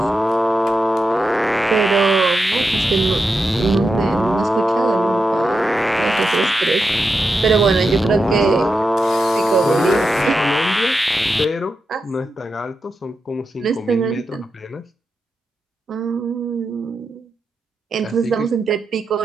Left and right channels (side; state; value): both; normal; correlation 0.87